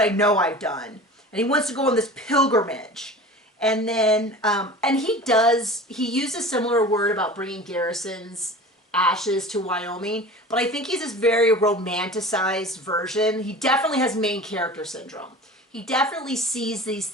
know I've done. And he wants to go on this pilgrimage. And then, and he used a similar word about bringing Garrison's ashes to Wyoming, but I think he's this very romanticized version. He definitely has main character syndrome. He definitely sees these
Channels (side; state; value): both; normal; correlation 0.37